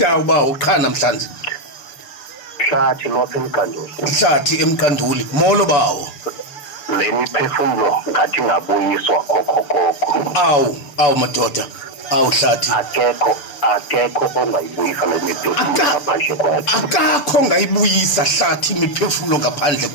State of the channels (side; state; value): right; late; 6.9 ms